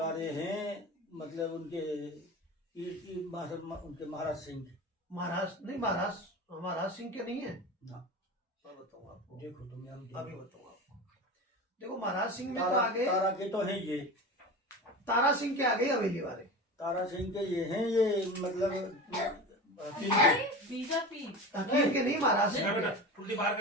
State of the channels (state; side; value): normal; both; correlation 0.30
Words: हैं, मतलब उनके उनके महाराज सिंह के। महाराज नहीं, महाराज सिंह के नहीं है ना मैं बताऊँ आपको, देखो तुम्हें हम अभी बताऊँ आपको। देखो महाराज सिंह में तो तारा, आ गए, तारा के तो हैं ये, तारा सिंह के आ गए हवेली वाले। तारा सिंह के ये हैं, ये मतलब बीजेपी हकीम के नहीं, महाराज सिंह बेटा के। उल्टी बाहर